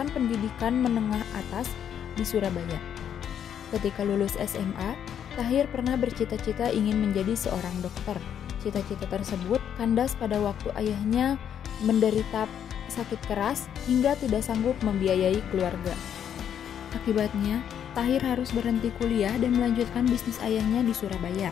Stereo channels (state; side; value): quieter; right; 9.0 dB